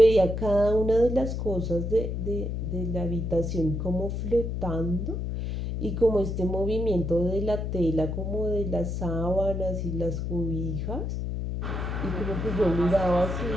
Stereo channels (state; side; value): noise; left; hum, 3 dB below the sound